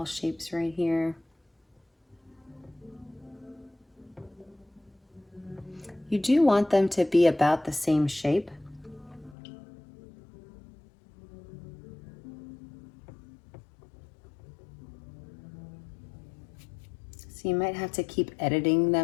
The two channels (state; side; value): drops out; right; at 9.3 s